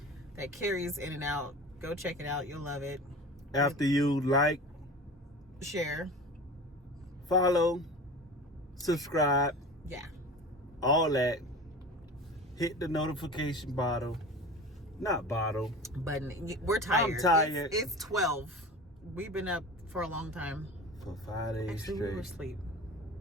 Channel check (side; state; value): both; normal; correlation 0.35